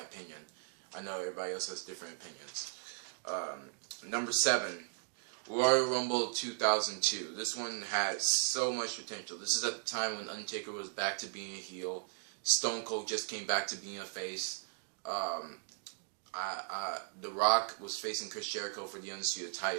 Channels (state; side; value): silent; left; digital silence